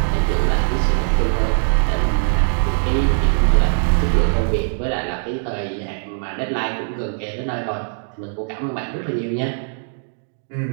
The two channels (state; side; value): silent; left; digital silence